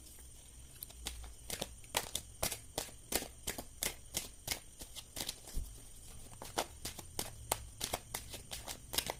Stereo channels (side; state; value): both; identical; correlation 1.00